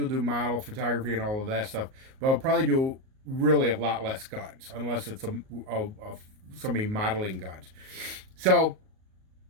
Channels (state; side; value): late; left; 38 ms